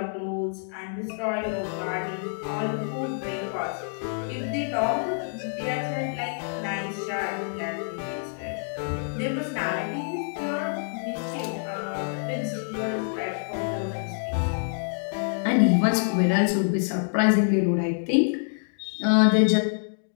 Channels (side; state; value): right; silent; digital silence